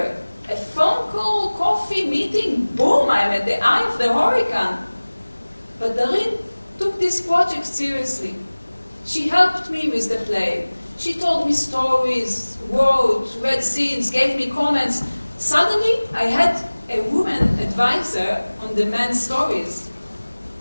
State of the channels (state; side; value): inverted; both; correlation -1.00